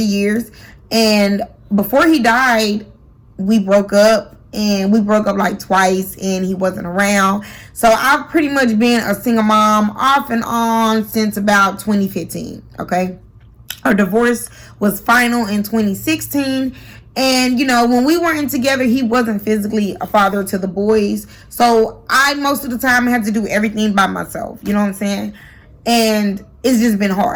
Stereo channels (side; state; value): both; identical; correlation 1.00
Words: years. And before he died, we broke up. And we broke up like twice, and he wasn't around. So I've pretty much been a single mom off and on since about 2015. Okay. Our divorce was final in 2016. And, when we weren't together, he wasn't physically a father to the boys. So I, most of the time, had to do everything by myself. You know what I'm saying? And it's just been